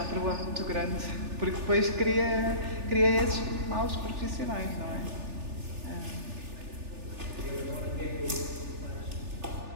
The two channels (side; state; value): left; late; 3.4 ms